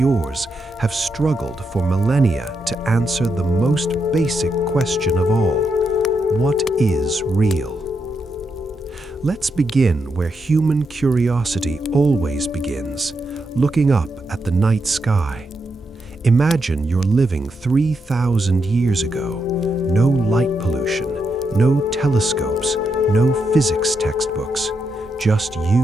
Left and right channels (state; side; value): normal; both; correlation 0.83